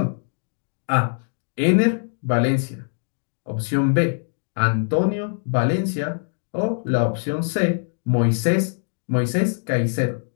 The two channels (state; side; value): silent; right; digital silence